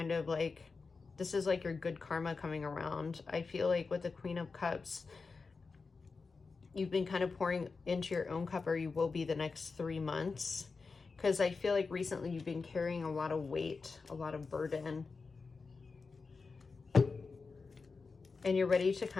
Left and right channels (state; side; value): quieter; right; 4.5 dB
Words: of like, this is like your good karma coming around. I feel like with the Queen of Cups, you've been kind of pouring into your own cup, or you will be the next 3 months. Because I feel like recently you've been carrying a lot of weight, a lot of burden. And you're ready to